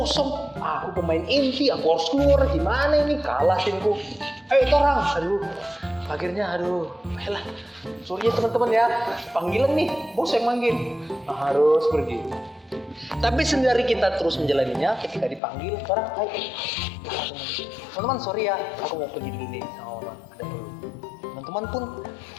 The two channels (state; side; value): drops out; right; at 15.4 s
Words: Aku pemain inti, aku harus keluar. Gimana ini, kalah timku. Ayo orang, akhirnya ayolah, sorry ya teman-teman ya, panggilan nih, bos yang manggil, harus pergi. Tapi sendiri kita terus menjalaninya, ketika dipanggil, orang, ayo, teman-teman sorry ya, aku mau pergi dulu nih sama mama, ada perlu.